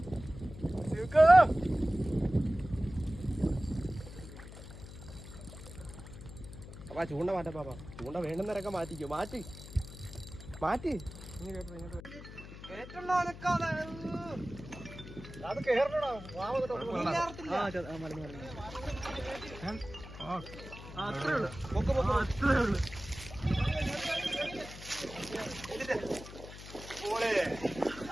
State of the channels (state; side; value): noise; left; hum, 13 dB below the sound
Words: അപ്പാ ചൂണ്ട മാറ്റാ പാപ്പാ ചൂണ്ട വേണ്ടുന്നവരൊക്കെ മാറ്റിക്കോ മാറ്റി മാറ്റി അത് കേറണോ അത്രേ ഉള്ളു അത്രേ ഉള്ളു